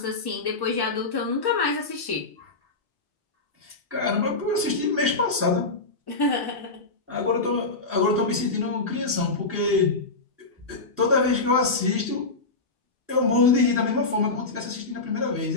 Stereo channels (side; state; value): right; quieter; 3.6 dB